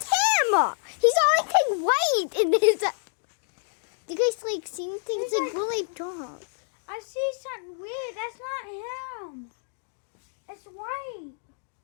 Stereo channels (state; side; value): silent; right; digital silence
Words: him! He's always like white in his. Do you guys like see anything? It's like really dark. I see something weird. That's not him. It's white.